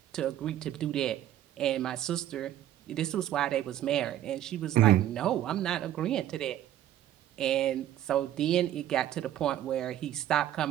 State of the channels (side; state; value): left; quieter; 12.1 dB